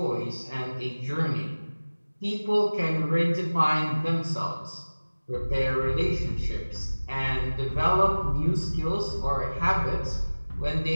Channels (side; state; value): both; inverted; correlation -1.00